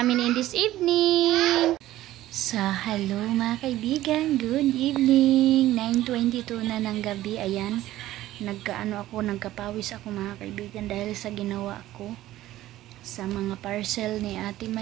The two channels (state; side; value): quieter; left; 14.9 dB